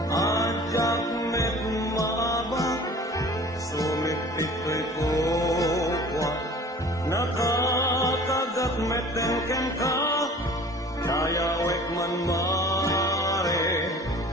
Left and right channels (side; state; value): both; normal; correlation 0.45